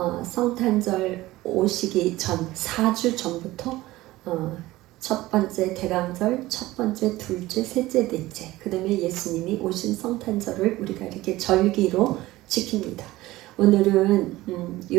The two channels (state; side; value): quieter; left; 17.7 dB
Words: 성탄절 오시기 전 4주 전부터 첫 번째 대강절, 첫 번째, 둘째, 셋째, 넷째, 그 다음에 예수님이 오신 성탄절을 우리가 이렇게 절기로 지킵니다. 오늘은